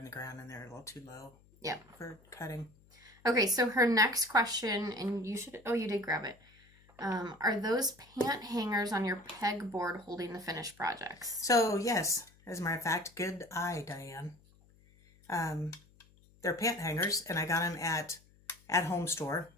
the ground and they're a little too low. Yep. For cutting. Okay, so her next question, and you did grab it. Are those pant hangers on your pegboard holding the finished projects? So, yes. As a matter of fact, good eye, Diane. They're pant hangers, and I got them at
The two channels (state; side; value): noise; left; hum, 28 dB below the sound